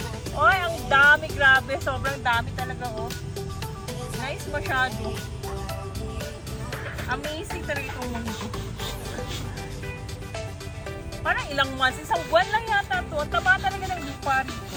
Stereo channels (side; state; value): both; identical; correlation 1.00